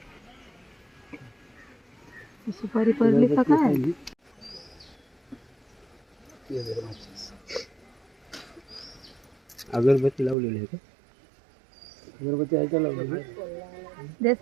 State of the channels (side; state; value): left; drops out; at 10.4 s